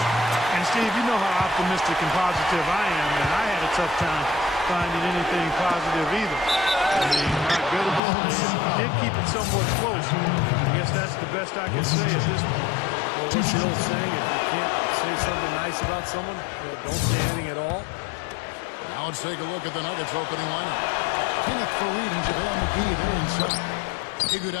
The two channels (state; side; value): drops out; right; at 8.0 s